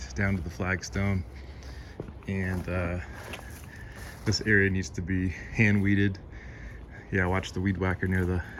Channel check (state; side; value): identical; both; correlation 1.00